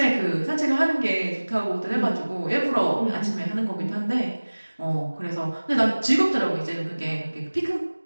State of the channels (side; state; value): both; inverted; correlation -1.00